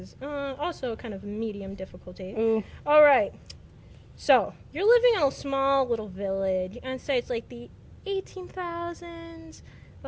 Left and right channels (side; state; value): both; identical; correlation 1.00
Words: also kind of medium difficulty. Ooh. All right. So, you're living in a small little village, and say it's like the 18,000s,